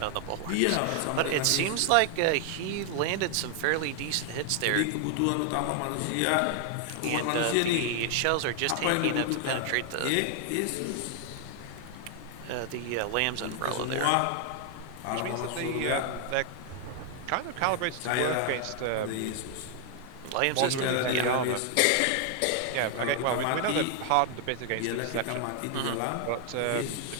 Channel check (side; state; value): both; different; correlation 0.00